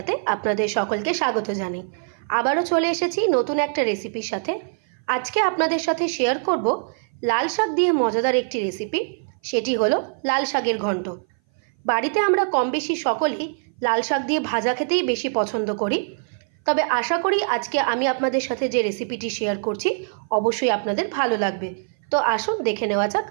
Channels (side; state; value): left; silent; 58 dB below the other